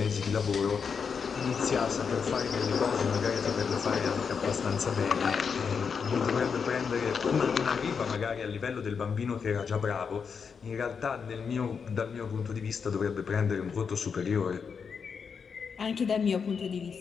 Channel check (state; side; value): quieter; right; 6.1 dB